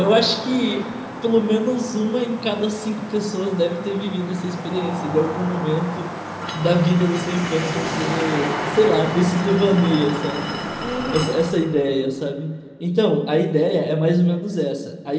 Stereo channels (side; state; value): both; identical; correlation 1.00